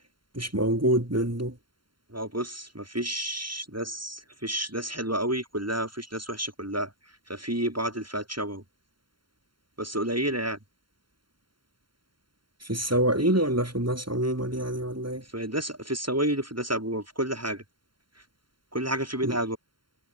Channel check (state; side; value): late; left; 0.73 ms